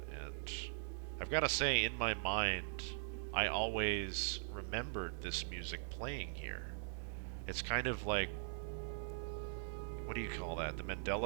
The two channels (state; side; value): silent; left; digital silence